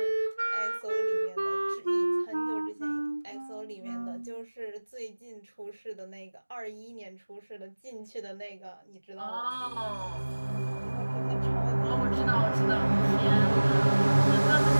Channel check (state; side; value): inverted; both; correlation -1.00